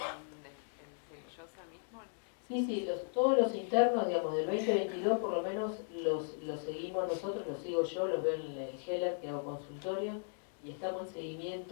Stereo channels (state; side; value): silent; right; digital silence